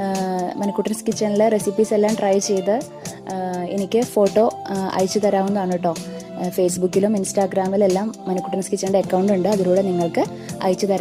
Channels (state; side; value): identical; both; correlation 1.00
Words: മണിക്കുട്ടൻസ് കിച്ചണിലെ റെസിപ്പീസ് എല്ലാം ട്രൈ ചെയ്ത് എനിക്ക് ഫോട്ടോ അയച്ചു തരാവുന്നതാണ് കേട്ടോ. ഫേസ്ബുക്കിലും ഇൻസ്റ്റാഗ്രാമിലെല്ലാം മണിക്കുട്ടൻസ് കിച്ചണിൻ്റെ അക്കൗണ്ട് ഉണ്ട്, അതിലൂടെ നിങ്ങൾക്ക് അയച്ചു